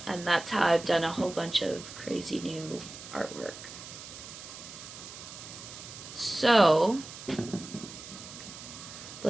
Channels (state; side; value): noise; right; hiss, 13 dB below the sound